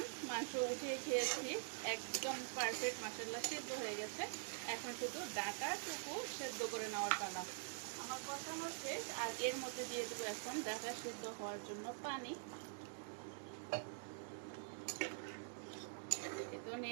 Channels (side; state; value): left; silent; digital silence